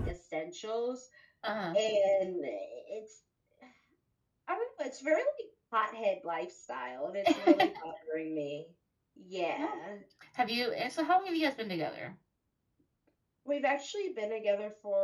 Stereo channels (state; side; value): identical; both; correlation 1.00